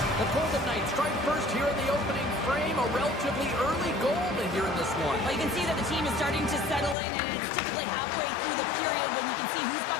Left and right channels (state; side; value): drops out; right; at 7.0 s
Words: The Golden Knights strike first here in the opening frame. A relatively early goal in here in this one. Well, you can see that the team is starting to settle in, and it's typically halfway through the period when you can see who's got